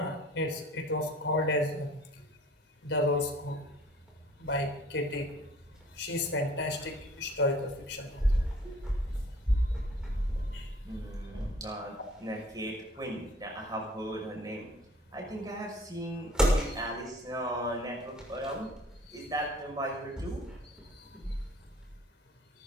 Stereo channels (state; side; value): normal; both; correlation 0.52